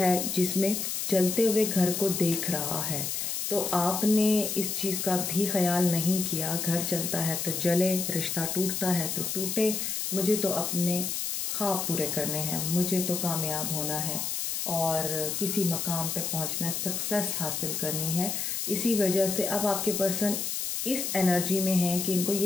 जिसमें चलते हुए घर को देख रहा है। तो आपने इस चीज़ का भी ख्याल नहीं किया, घर चलता है तो जले, रिश्ता टूटता है तो टूटे, मुझे तो अपने ख्वाब पूरे करने हैं, मुझे तो कामयाब होना है और किसी मकाम पे पहुंचना है, सक्सेस हासिल करनी है। इसी वजह से अब आपके पर्सन इस एनर्जी में हैं कि इनको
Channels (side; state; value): left; noise; hiss, 2 dB below the sound